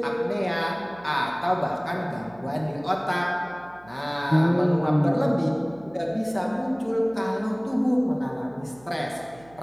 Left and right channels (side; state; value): right; noise; hum, 25 dB below the sound